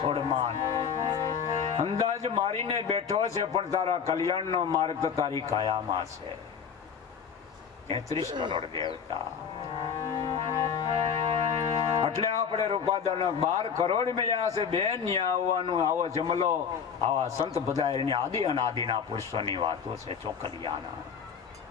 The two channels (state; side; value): quieter; right; 7.0 dB